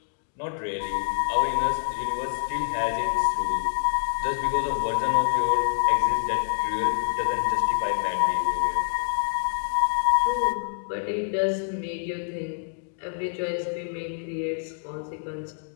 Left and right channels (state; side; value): silent; right; digital silence